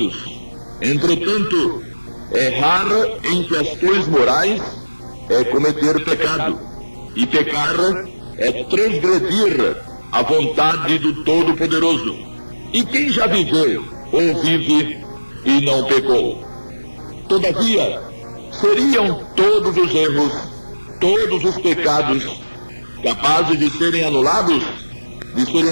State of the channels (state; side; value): inverted; both; correlation -1.00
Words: Entretanto, errar em questões morais é cometer pecado, e pecar é transgredir a vontade do Todo-Poderoso. E quem já viveu ou vive e não pecou? Todavia, seriam todos os erros, todos os pecados, capazes de serem anulados, de serem